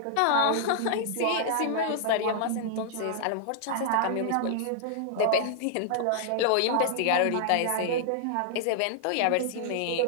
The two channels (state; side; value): different; both; correlation -0.01